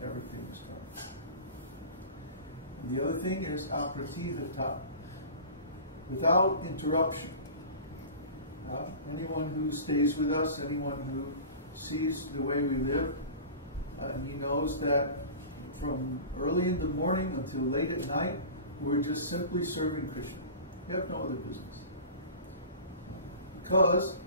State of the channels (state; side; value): inverted; both; correlation -0.36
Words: everything is coming. And the other thing is apratihata, without interruption. Anyone who stays with us, anyone who sees the way we live, he knows that from early in the morning until late at night, we're just simply serving Krishna. We have no other business. Because